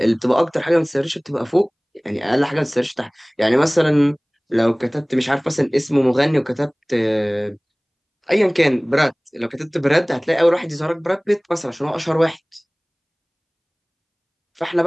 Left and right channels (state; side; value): identical; both; correlation 1.00